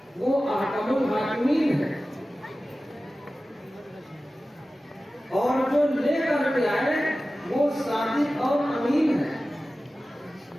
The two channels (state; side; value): normal; both; correlation 0.96